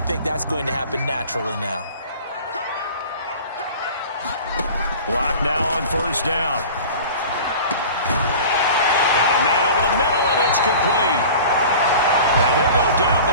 think that's going to happen naturally now. Lock now on first down. Got a man over the middle, and it's complete. And he'll go down,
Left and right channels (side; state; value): both; inverted; correlation -0.40